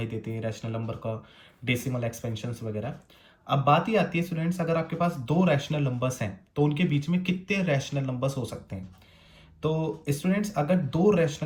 देते हैं, रैशनल नंबर का डेसिमल एक्सपेंशंस वगैरह। अब बात ही आती है स्टूडेंट्स, अगर आपके पास दो रैशनल नंबर्स हैं तो उनके बीच में कितने रैशनल नंबर्स हो सकते हैं? तो स्टूडेंट्स, अगर दो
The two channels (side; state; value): both; identical; correlation 1.00